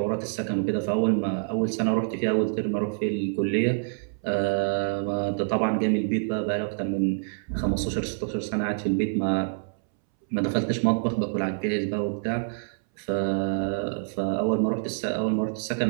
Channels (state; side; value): silent; left; 61 dB below the other